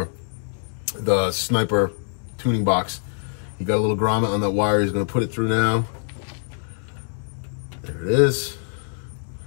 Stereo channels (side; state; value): right; silent; digital silence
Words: the Sniper tuning box. He got a little grommet on that wire. He's going to put it through now. There it is.